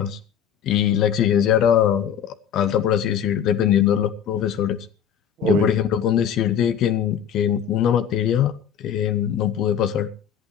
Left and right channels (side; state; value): right; quieter; 8.7 dB